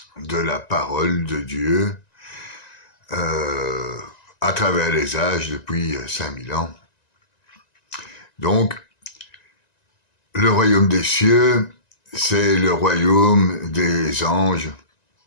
de la parole de Dieu à travers les âges depuis 5000 ans. Donc, le royaume des cieux, c'est le royaume des anges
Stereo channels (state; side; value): late; right; 1.9 ms